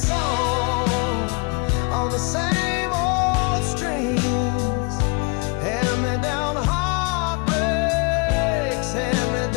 on the same old strings. Hand-me-down heartbreaks,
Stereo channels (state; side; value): quieter; right; 30.4 dB